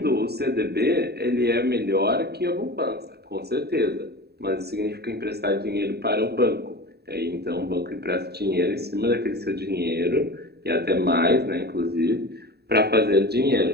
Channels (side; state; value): left; late; 0.47 ms